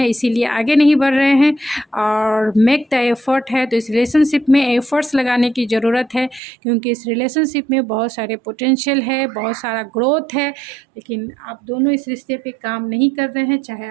इसीलिए आगे नहीं बढ़ रहे हैं और मेक द एफ़र्ट है। तो इस रिलेशनशिप में एफ़र्ट्स लगाने की ज़रूरत है, क्योंकि इस रिलेशनशिप में बहुत सारे पोटेंशियल है, बहुत सारा ग्रोथ है, लेकिन आप दोनों इस रिश्ते पे काम नहीं कर रहे हैं, चाहे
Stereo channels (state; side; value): drops out; left; at 6.4 s